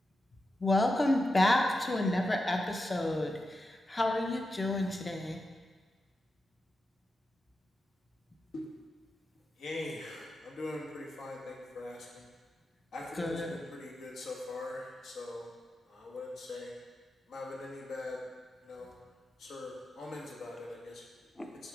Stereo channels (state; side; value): normal; both; correlation 0.89